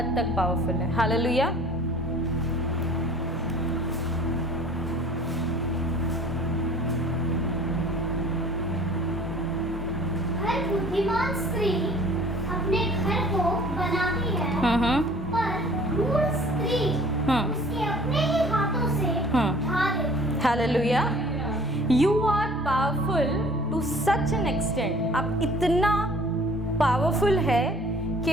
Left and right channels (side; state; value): both; normal; correlation 0.50